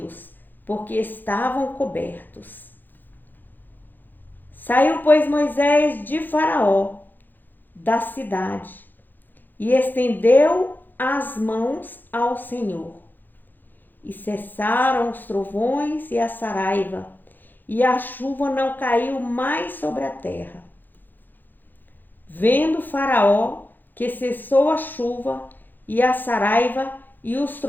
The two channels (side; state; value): right; late; 0.089 ms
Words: porque estavam cobertos. Saiu, pois, Moisés de Faraó, da cidade, e estendeu as mãos ao Senhor. E cessaram os trovões e a saraiva, e a chuva não caiu mais sobre a terra. Vendo Faraó que cessou a chuva e a saraiva e os